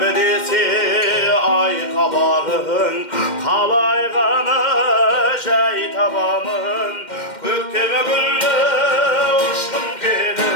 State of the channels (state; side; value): late; right; 2.1 ms